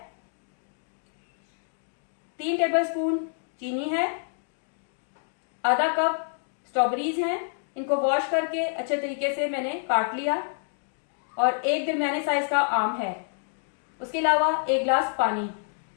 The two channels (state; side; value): silent; right; digital silence